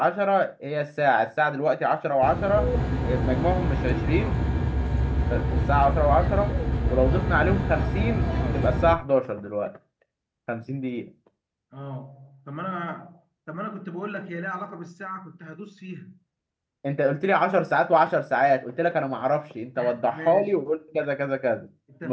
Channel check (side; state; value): both; identical; correlation 1.00